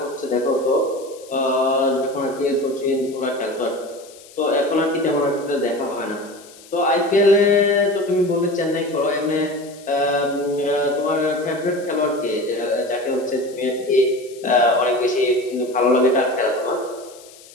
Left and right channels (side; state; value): left; noise; hiss, 22 dB below the sound